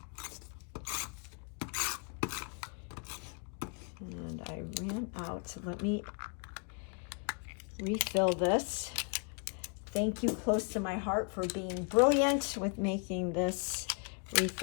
And I ran out, so let me refill this. Thank you, Close to My Heart, for being brilliant with making this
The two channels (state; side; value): quieter; right; 39.2 dB